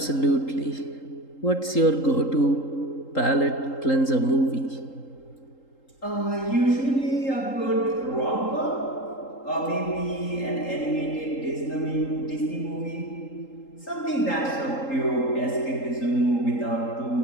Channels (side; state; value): right; late; 3.8 ms